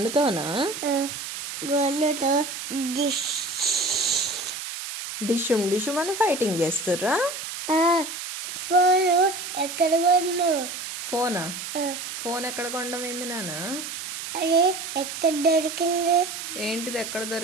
గన్నుతో డిషుమ్ అని ఫైటింగ్ చేస్తుర్రా? ఫోన్ ఎక్కడ కొను? ఫోన్ ఎక్కడ కొండమైంది నాన్న? అది ఎక్కడ దొరికింది? ఏంటిది ఎక్కడ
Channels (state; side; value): noise; right; hiss, 7 dB below the sound